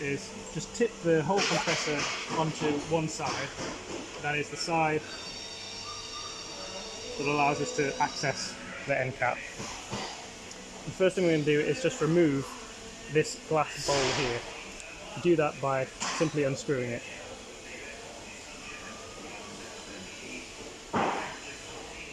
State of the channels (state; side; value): identical; both; correlation 1.00